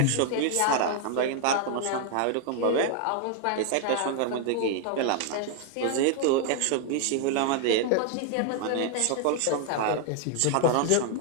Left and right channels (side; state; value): both; different; correlation 0.00